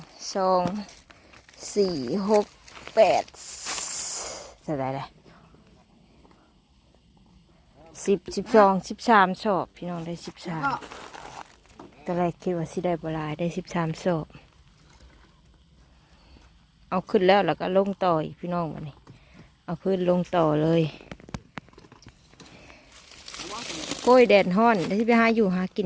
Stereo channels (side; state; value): both; identical; correlation 1.00